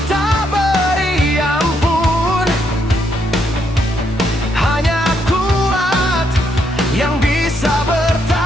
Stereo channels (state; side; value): normal; both; correlation 0.75